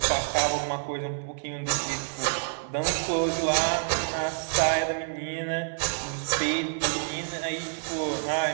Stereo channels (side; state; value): left; silent; digital silence